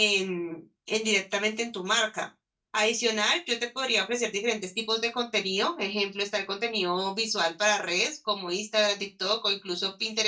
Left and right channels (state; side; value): identical; both; correlation 1.00